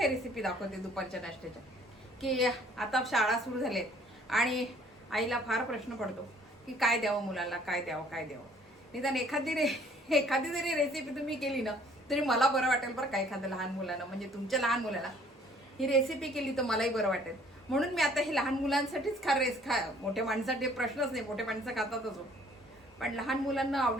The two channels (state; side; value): normal; both; correlation 0.58